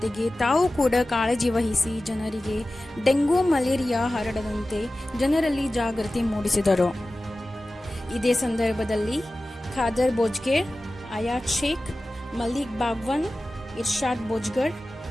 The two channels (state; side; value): normal; both; correlation 0.96